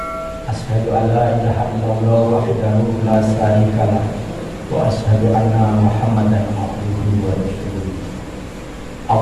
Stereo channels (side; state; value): both; identical; correlation 1.00